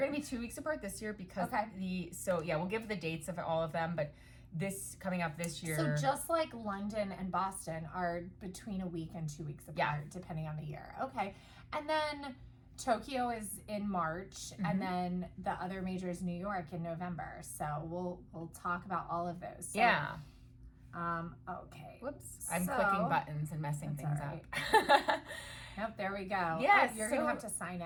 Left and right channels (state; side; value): identical; both; correlation 1.00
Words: to be 2 weeks apart this year because we'll give the dates of all of them, but this coming up this year. So just like London and Boston are between a week and 2 weeks apart, depending on the year. Okay. And then Tokyo is in March, and then the other major is New York in November. So we'll talk about all of those. So, okay. Whoops. I'm clicking buttons and messing things up. Yep, there we go. Yes. You're going to have to sign